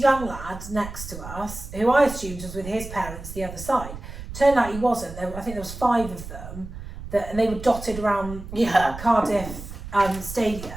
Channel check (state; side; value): noise; right; rumble, 11 dB below the sound